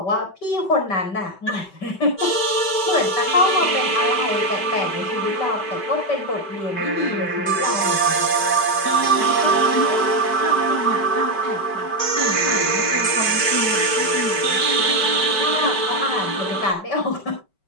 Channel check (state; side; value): late; right; 5.2 ms